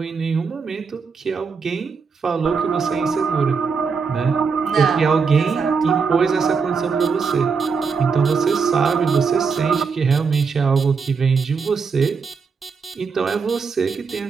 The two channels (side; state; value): left; quieter; 5.4 dB